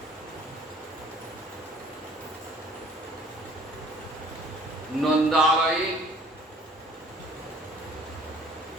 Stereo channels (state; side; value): normal; both; correlation 0.54